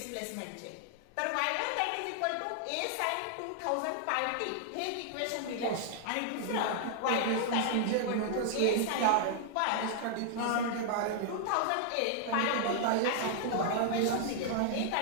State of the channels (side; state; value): both; different; correlation 0.00